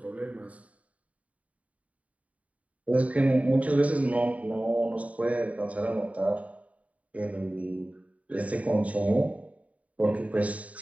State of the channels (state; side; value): late; left; 0.068 ms